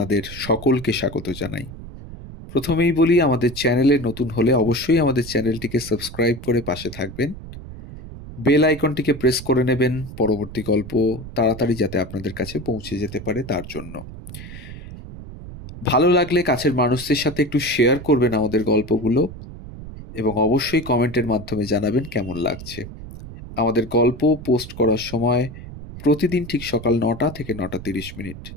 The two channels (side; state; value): right; noise; rumble, 13 dB below the sound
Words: সকলকে স্বাগত জানাই। প্রথমেই বলি, আমাদের চ্যানেলে নতুন হলে অবশ্যই আমাদের চ্যানেলটিকে সাবস্ক্রাইব করে পাশে থাকবেন, বেল আইকনটিকে প্রেস করে নেবেন পরবর্তী গল্প তাড়াতাড়ি যাতে আপনাদের কাছে পৌঁছে যেতে পারে তার জন্য। ভালো লাগলে কাছের মানুষদের সাথে একটু শেয়ার করবেন আমাদের গল্পগুলো, এবং অবশ্যই কমেন্টের মাধ্যমে জানাবেন কেমন লাগছে। আমাদের গল্প পোস্ট করার সময় প্রতিদিন ঠিক সকাল 9টা থেকে 9:30।